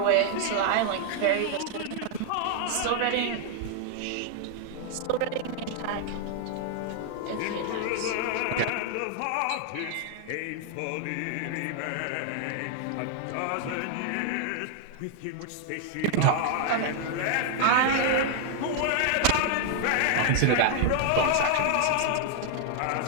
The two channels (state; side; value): different; both; correlation 0.00